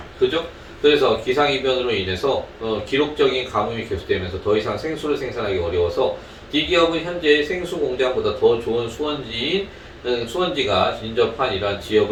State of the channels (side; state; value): both; identical; correlation 1.00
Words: 그죠? 그래서 기상이변으로 인해서 기록적인 가뭄이 계속되면서 더 이상 생수를 생산하기 어려워서 D기업은 현재 생수 공장보다 더 좋은 수원지가 인접한 이러한